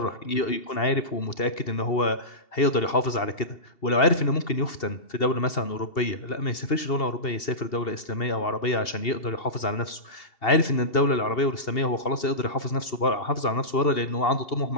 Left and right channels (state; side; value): late; right; 2.7 ms